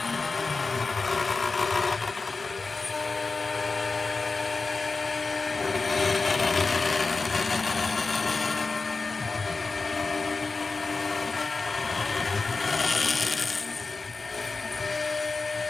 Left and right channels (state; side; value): quieter; right; 4.0 dB